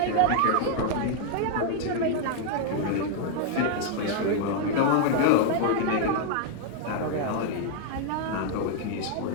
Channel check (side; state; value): both; different; correlation 0.00